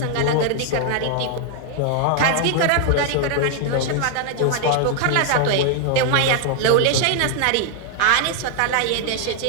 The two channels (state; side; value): different; both; correlation 0.00